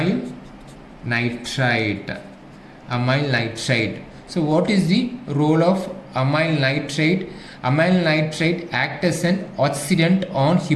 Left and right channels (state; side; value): identical; both; correlation 1.00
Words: nitrite. So what is the role of amyl nitrite? Amyl nitrite acts as an oxidant on